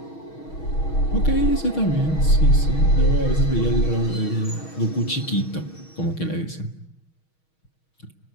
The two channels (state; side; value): late; right; 6.3 ms